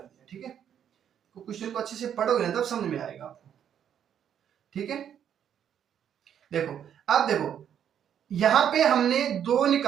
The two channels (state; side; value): quieter; left; 9.1 dB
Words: दिया। ठीक है, तो क्वेश्चन को अच्छे से पढ़ोगे ना तब समझ में आएगा आपको। ठीक है, देखो अब देखो यहां पे हमने 2